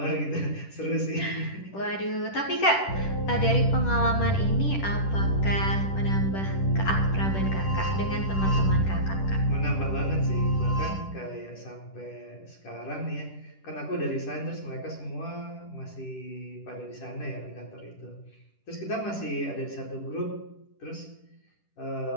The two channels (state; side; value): late; right; 10 ms